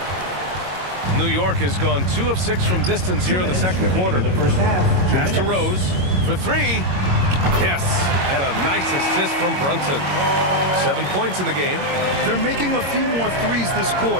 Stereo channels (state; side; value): late; left; 22 ms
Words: New York has gone 2 of 6 from distance here in the second quarter. Pass to Rose for 3. Yes, and a nice assist from Brunson. 7 points in the game. They're making a few more threes this